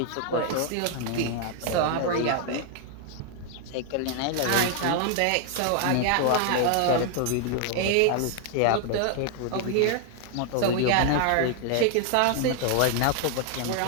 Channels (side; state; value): both; different; correlation 0.00